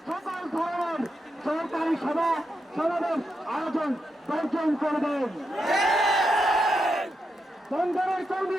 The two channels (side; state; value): both; normal; correlation 0.85